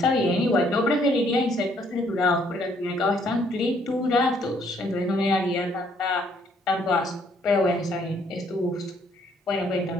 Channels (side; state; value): both; normal; correlation 0.66